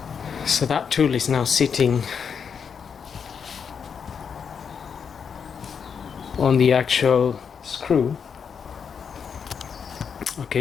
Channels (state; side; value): quieter; right; 6.7 dB